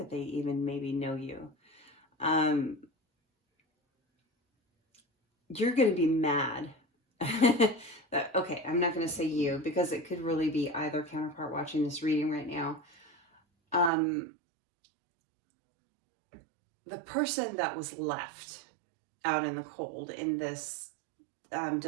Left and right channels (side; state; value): left; drops out; at 13.9 s